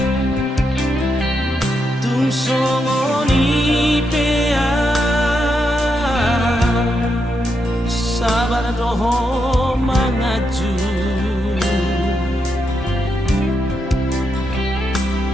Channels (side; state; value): both; normal; correlation 0.82